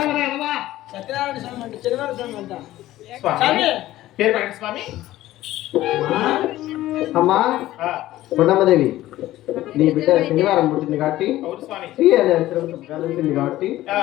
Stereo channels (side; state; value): right; quieter; 15.3 dB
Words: సత్యనారాయణ స్వామి అంటే శనివారం స్వామి అంట. స్వామి స్వామి. పేరు పెట్టండి స్వామి. అమ్మా ఆ, కొండమ్మదేవి నీ బిడ్డ శనివారం పుట్టింది కాబట్టి అవును స్వామి. శ్రీ అనే అక్షరంతో కలిసింది కాబట్టి ఆ,